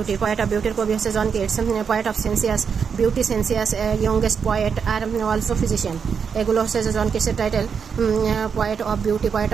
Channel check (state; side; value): quieter; left; 6.5 dB